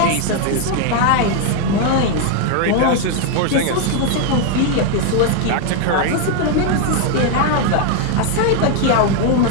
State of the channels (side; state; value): both; different; correlation 0.01